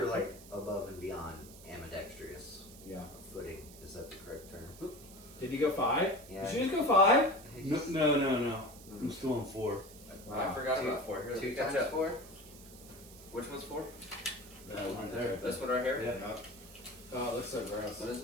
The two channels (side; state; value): right; noise; hiss, 19 dB below the sound